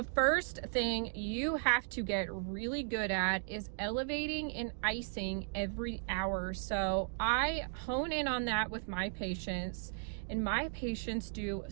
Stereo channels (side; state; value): left; silent; digital silence